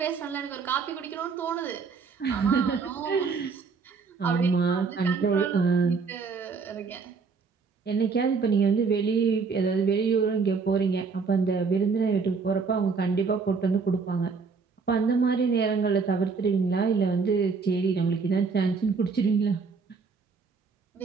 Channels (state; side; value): quieter; left; 5.0 dB